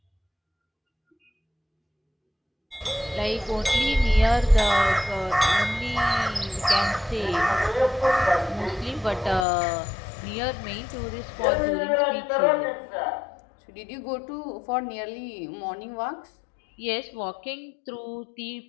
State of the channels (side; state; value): right; drops out; at 9.5 s